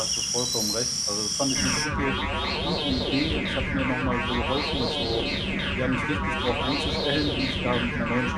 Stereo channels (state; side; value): identical; both; correlation 1.00